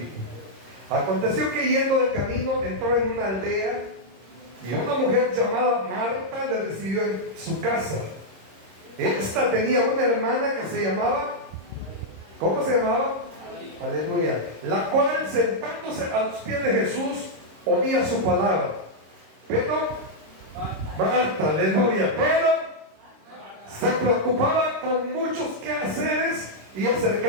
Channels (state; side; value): late; left; 26 ms